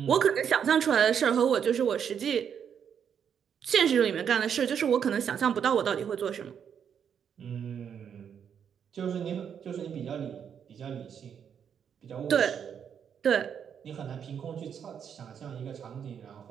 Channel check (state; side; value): quieter; left; 7.9 dB